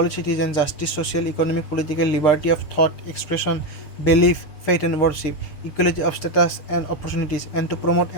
citizens justice, social, economic, political liberty of thought, expression, belief, faith and worship, equality of status and opportunities, and to promote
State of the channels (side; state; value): right; late; 6.7 ms